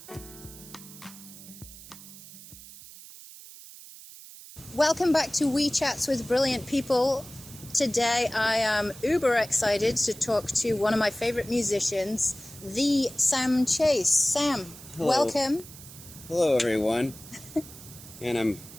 Welcome back to WeeChats with Brilliant People. Today I am uber excited to talk to one of my favorite musicians, the Sam Chase. Sam, Hello. Welcome. Hello, everyone. And I'm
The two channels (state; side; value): noise; right; hiss, 17 dB below the sound